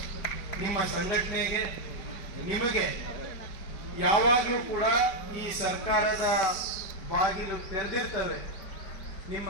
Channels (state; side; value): late; right; 4.9 ms